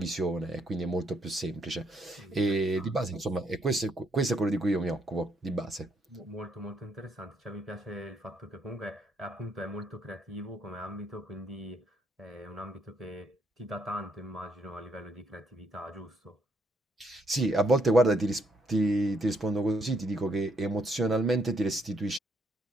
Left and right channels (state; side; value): normal; both; correlation 0.73